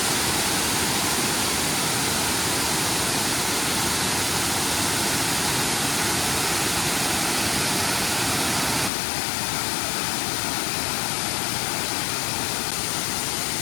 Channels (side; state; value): right; drops out; at 8.9 s